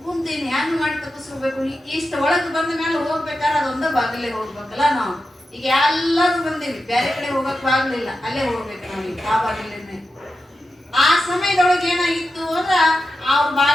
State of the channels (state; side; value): normal; both; correlation 0.90